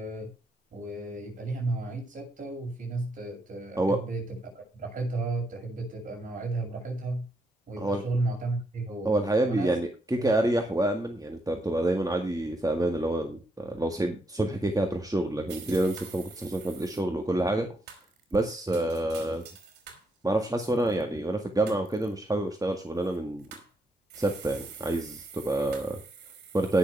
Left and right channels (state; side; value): normal; both; correlation 0.78